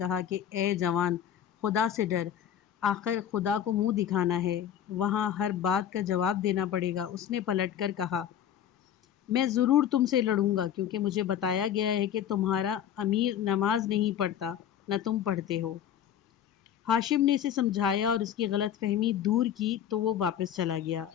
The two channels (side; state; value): right; quieter; 9.7 dB